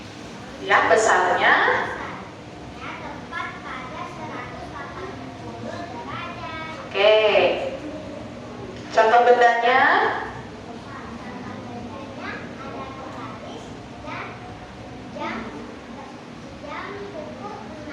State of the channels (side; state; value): both; identical; correlation 1.00